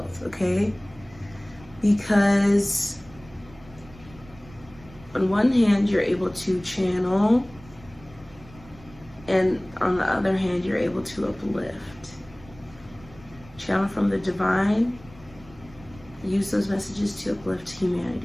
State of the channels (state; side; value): noise; right; rumble, 22 dB below the sound